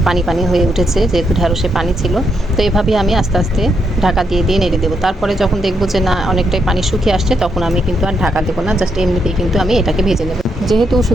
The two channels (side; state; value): both; normal; correlation 0.79